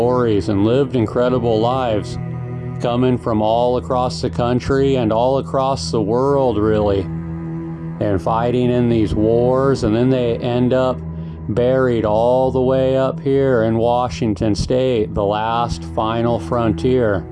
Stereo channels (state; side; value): identical; both; correlation 1.00